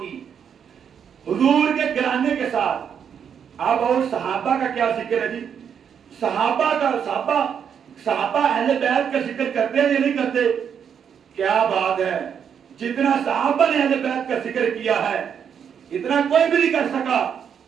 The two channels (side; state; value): left; quieter; 7.8 dB